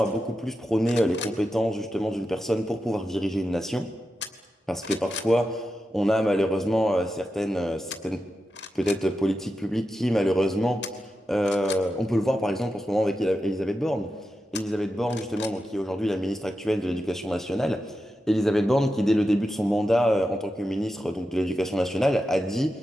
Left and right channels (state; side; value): normal; both; correlation 0.89